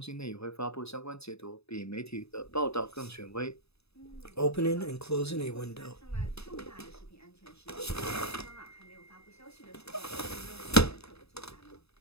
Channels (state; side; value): late; right; 0.79 ms